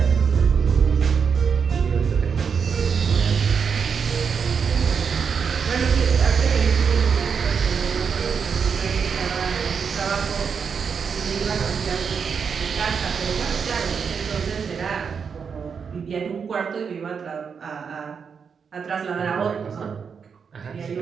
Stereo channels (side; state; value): left; quieter; 6.3 dB